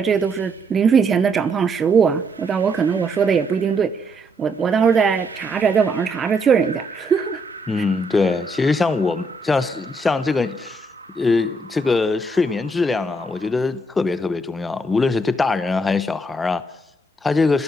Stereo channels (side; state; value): both; normal; correlation 0.74